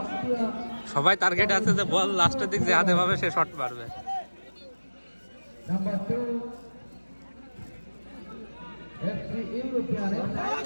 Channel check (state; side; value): inverted; both; correlation -1.00